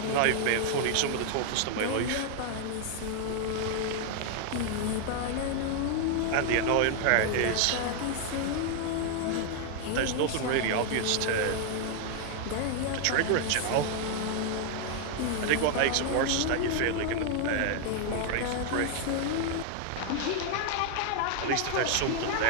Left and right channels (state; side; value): different; both; correlation 0.00